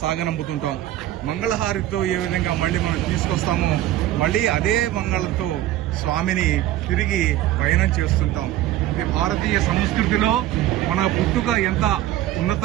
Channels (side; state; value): left; quieter; 13.8 dB